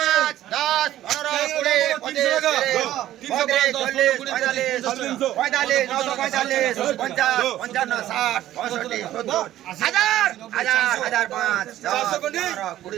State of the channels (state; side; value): quieter; left; 13.4 dB